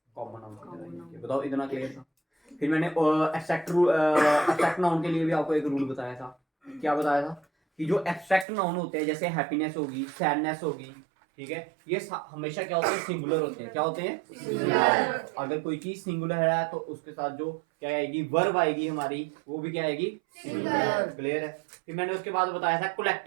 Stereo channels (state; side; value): drops out; left; at 8.5 s